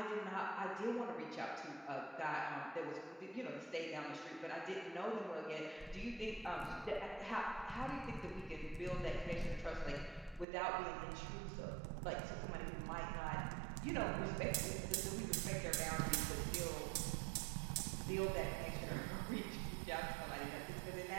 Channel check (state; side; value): drops out; left; at 10.5 s